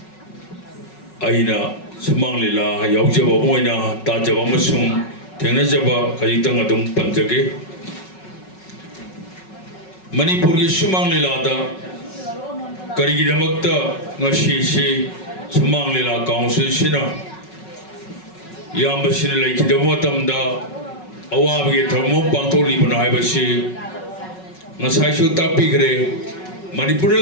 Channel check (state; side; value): late; right; 5.4 ms